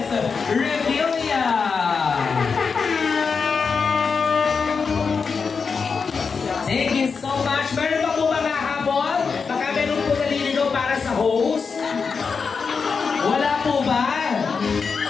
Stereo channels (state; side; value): quieter; right; 5.3 dB